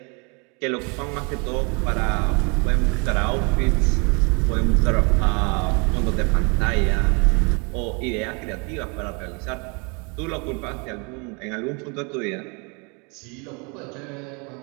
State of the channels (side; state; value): left; quieter; 32.3 dB